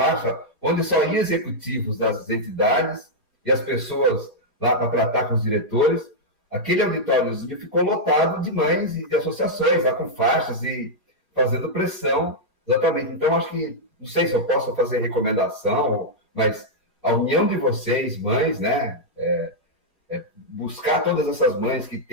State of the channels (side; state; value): both; normal; correlation -0.05